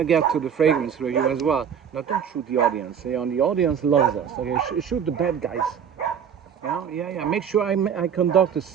get to the fragrance review as well. Now, don't shoot the audience. The audience loves us. Okay, shoot the bad guys. Yeah. Make sure I conduct a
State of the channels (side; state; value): left; quieter; 8.0 dB